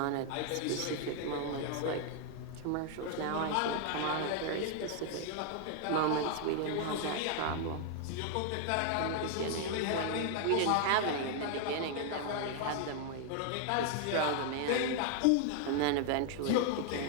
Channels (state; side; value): different; both; correlation 0.00